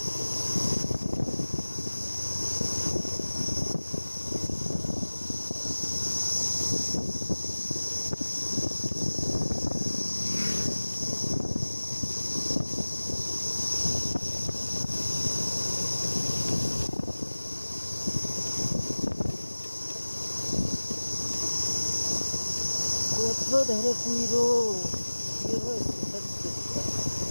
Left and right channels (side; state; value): both; inverted; correlation -1.00